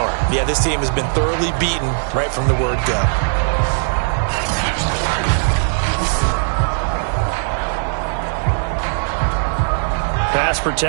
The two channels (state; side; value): silent; left; 64 dB below the other